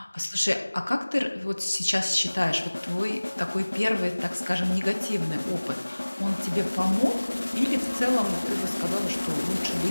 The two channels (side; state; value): both; inverted; correlation -1.00